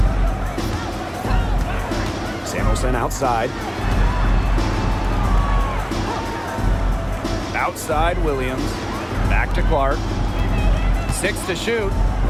Samuelson outside. Outside Williams. Back to Clark. 6 to shoot.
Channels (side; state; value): both; identical; correlation 1.00